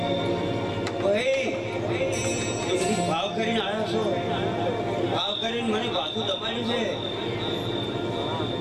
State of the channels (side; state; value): both; identical; correlation 1.00